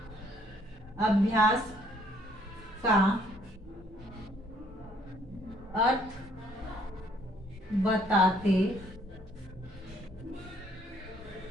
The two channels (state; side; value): normal; both; correlation 0.64